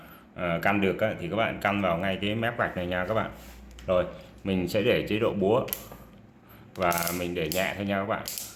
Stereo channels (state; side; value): identical; both; correlation 1.00